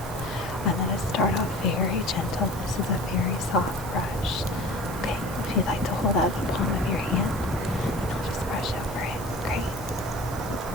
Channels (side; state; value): left; noise; hiss, 18 dB below the sound